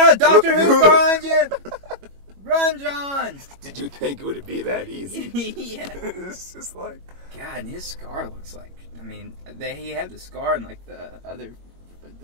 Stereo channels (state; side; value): late; left; 21 ms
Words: Doctor Who's behind you. Run, John! Did you think it would be that easy? Yeah. It's just like... God, and his scar looks like... I mean, he had the scar in like the other... But